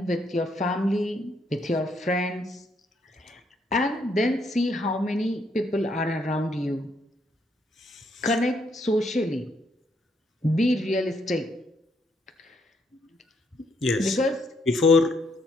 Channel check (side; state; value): both; normal; correlation 0.73